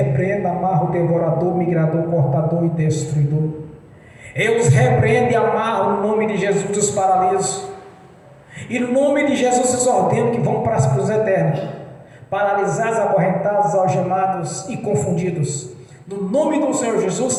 amarro o devorador, migrador, cortador e destruidor. Eu os repreendo e amarro no nome de Jesus os paraliso. E no nome de Jesus os ordeno que vão para os eternos, paralisados, acorrentados, algemados e confundidos. No nome do Senhor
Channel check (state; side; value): identical; both; correlation 1.00